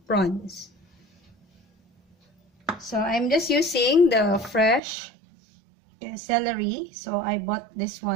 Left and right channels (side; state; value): left; drops out; at 4.8 s